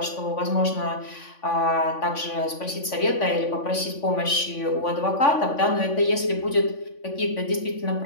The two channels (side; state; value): right; late; 3.5 ms